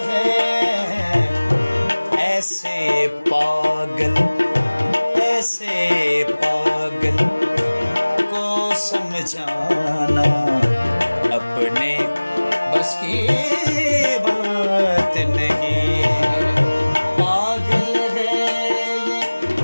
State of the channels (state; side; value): inverted; both; correlation -1.00